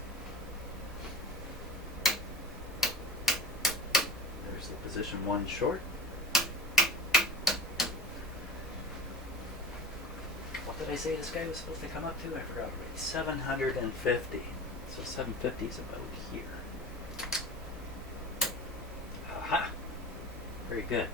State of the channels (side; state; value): both; normal; correlation 0.33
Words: There's the position 1 short. What did I say this guy was supposed to come up to? I forgot already. 750. So 750 is about here. Aha! Very good.